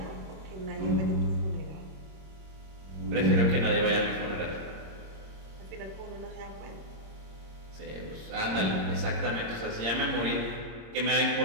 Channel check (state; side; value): late; left; 26 ms